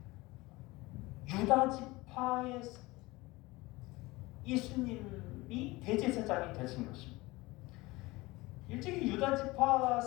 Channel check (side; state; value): right; quieter; 21.5 dB